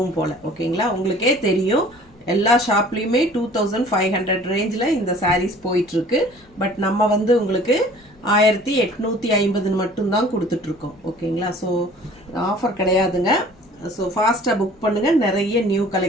போல. ஓகேங்களா, உங்களுக்கே தெரியும் எல்லா ஷாப்லயுமே 2500 ரேஞ்சில் இந்த சாரீஸ் போயிட்டு இருக்கு. பட் நம்ம வந்து உங்களுக்கு 1850 மட்டும்தான் கொடுத்துட்டு இருக்கோம். ஓகேங்களா, ஸோ ஆஃபர் கிடையாதுங்க. ஸோ ஃபாஸ்ட்டாக புக் பண்ணுங்க. நிறைய நியூ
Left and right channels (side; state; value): both; normal; correlation 0.49